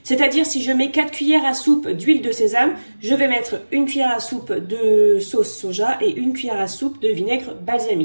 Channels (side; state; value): both; inverted; correlation -1.00